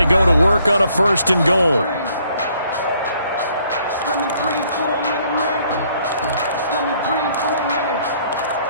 go to work on a 1st and goal.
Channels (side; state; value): both; inverted; correlation -0.65